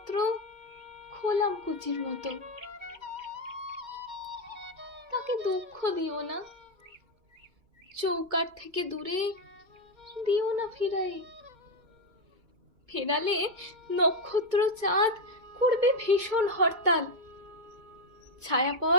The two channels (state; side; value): late; left; 2.2 ms